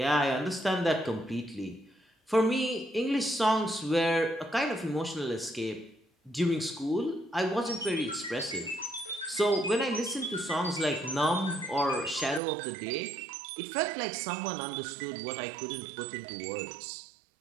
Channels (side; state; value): left; drops out; at 12.4 s